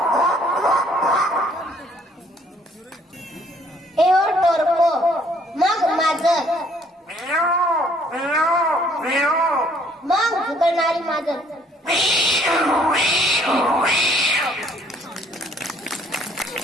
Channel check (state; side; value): normal; both; correlation 0.62